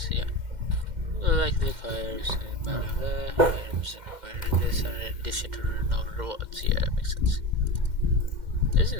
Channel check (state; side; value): late; left; 2.1 ms